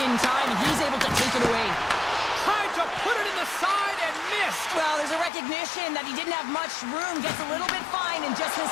time, and he's able to take it away. Tried to put it in the side and missed. Well, there's a recognition that he didn't have much room, gets a little bit fine, and just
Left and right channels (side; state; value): right; drops out; at 5.3 s